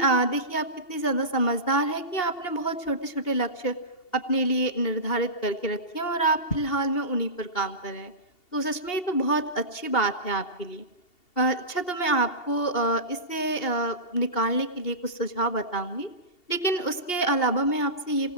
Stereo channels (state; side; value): late; right; 2.8 ms